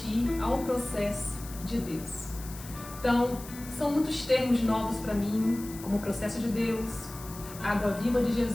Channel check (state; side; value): noise; left; hiss, 15 dB below the sound